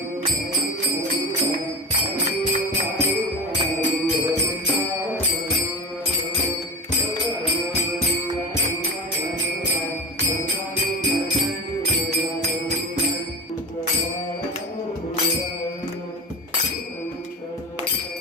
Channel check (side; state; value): both; normal; correlation 0.27